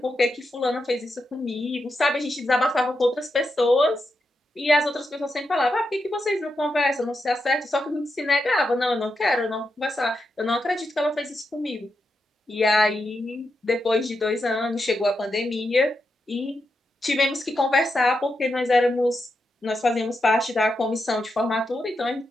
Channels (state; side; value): normal; both; correlation 0.86